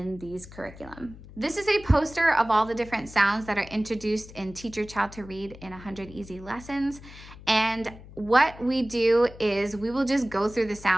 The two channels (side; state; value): left; noise; hum, 18 dB below the sound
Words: these curriculum. This is a poster of all the different sounds that are introduced in Teach Your Child to Read in 100 Easy Lessons. And what we do is we will just go through the